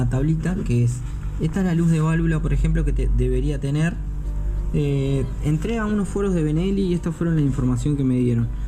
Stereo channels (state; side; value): identical; both; correlation 1.00